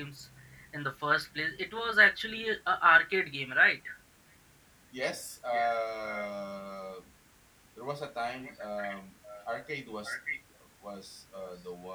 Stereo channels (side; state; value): both; identical; correlation 1.00